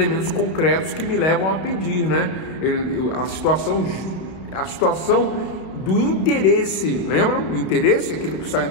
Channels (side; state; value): right; late; 31 ms